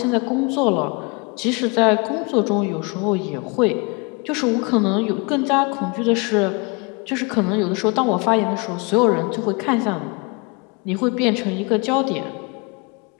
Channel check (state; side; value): quieter; right; 30.1 dB